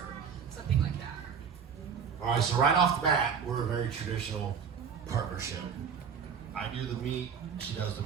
something like that. All right, so right off the bat, we're a very traditional partnership. I do the meat, she does the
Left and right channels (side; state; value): left; quieter; 6.8 dB